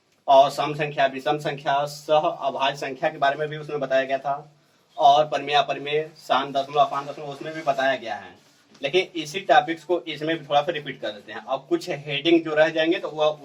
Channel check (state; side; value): identical; both; correlation 1.00